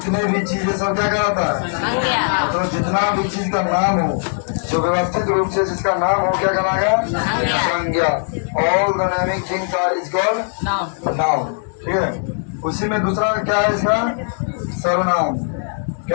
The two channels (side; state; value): right; silent; digital silence